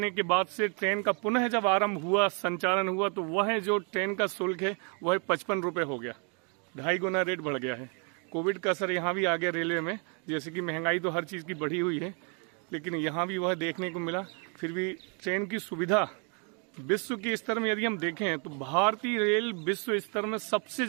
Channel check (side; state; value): left; quieter; 36.8 dB